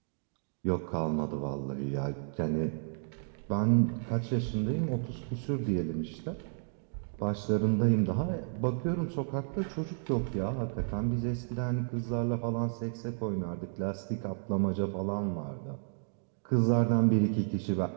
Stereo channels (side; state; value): left; silent; digital silence